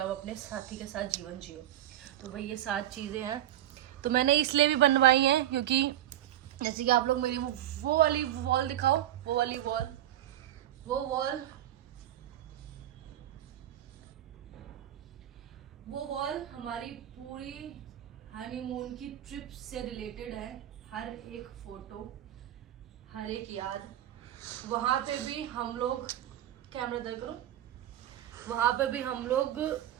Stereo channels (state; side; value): quieter; left; 12.7 dB